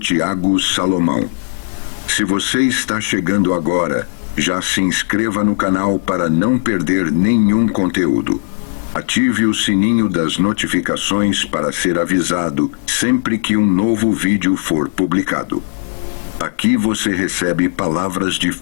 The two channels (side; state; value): right; silent; digital silence